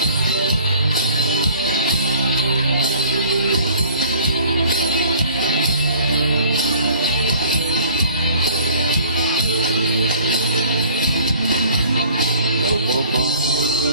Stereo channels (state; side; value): inverted; both; correlation -0.50